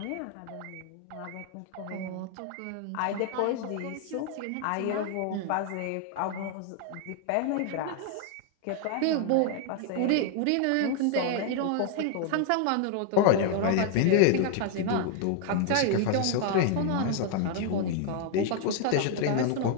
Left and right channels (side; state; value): both; different; correlation 0.00